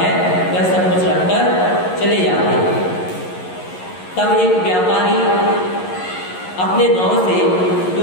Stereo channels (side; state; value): right; late; 11 ms